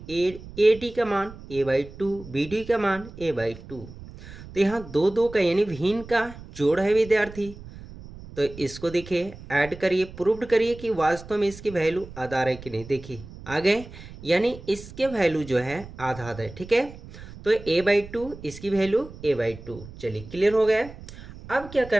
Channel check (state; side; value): noise; right; rumble, 16 dB below the sound